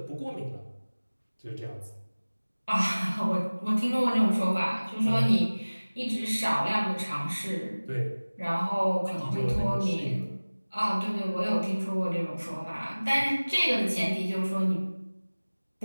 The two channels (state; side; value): inverted; both; correlation -1.00